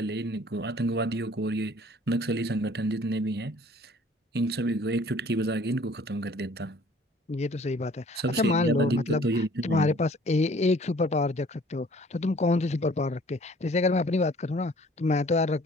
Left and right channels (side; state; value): both; normal; correlation 0.54